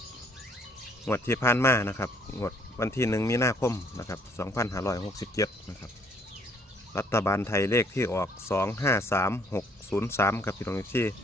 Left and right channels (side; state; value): both; normal; correlation 0.63